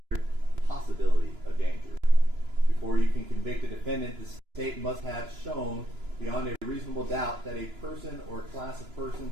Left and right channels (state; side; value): late; left; 2.9 ms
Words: possibility of danger. Before you can convict a defendant, the state must have shown beyond a reasonable doubt that a person or class of